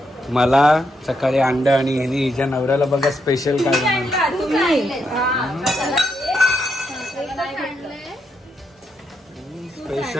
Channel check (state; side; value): normal; both; correlation 0.80